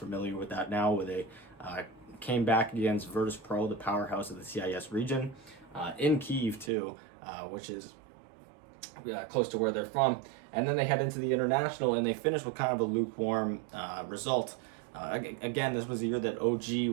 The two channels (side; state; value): left; drops out; at 6.7 s